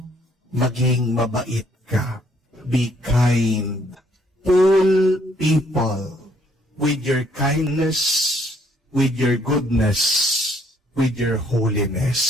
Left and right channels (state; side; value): normal; both; correlation 0.66